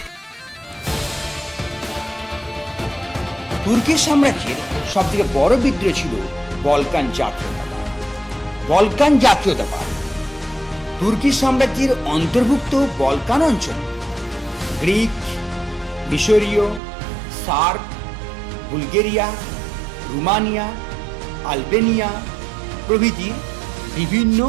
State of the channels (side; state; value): left; drops out; at 16.8 s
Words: তুর্কি সাম্রাজ্যের সব থেকে বড় বিদ্রোহ ছিল বলকান জাতীয়তাবাদ। বলকান জাতীয়তাবাদ তুর্কি সাম্রাজ্যের অন্তর্ভুক্ত বলকান অঞ্চল গ্রিক, মিশরীয়, সার্ব, বুলগেরিয়া, রোমানিয়া, আলবেনিয়া প্রভৃতি বিভিন্ন